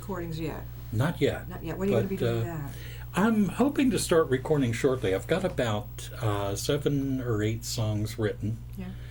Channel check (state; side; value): identical; both; correlation 1.00